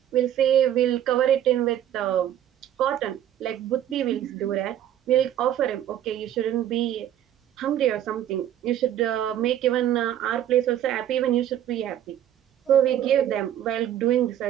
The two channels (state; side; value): quieter; left; 11.1 dB